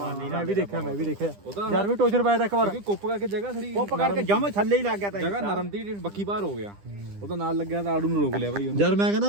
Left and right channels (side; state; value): left; late; 10 ms